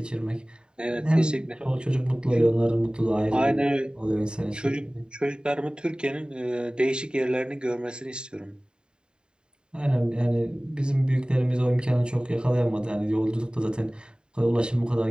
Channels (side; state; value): left; late; 0.049 ms